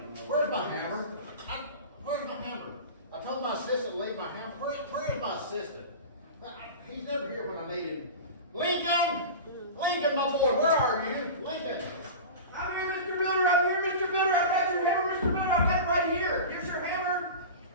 Where's my hammer? Where's my hammer? I told my assistant to leave my hammer. Where is my assistant? He's never here when I need him. Lincoln! Lincoln, my boy, where are you? Lincoln! I'm here, Mr. Builder. I'm here, Mr. Builder. I've got your hammer, Mr. Builder. I've got it right here. Here's your hammer.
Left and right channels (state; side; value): inverted; both; correlation -0.30